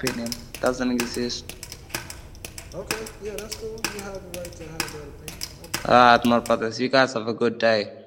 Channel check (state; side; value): identical; both; correlation 1.00